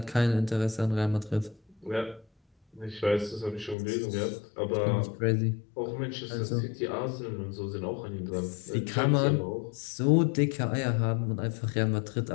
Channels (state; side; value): drops out; right; at 3.8 s